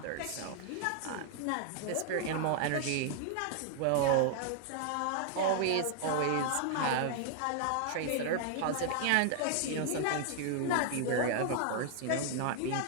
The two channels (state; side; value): different; both; correlation 0.00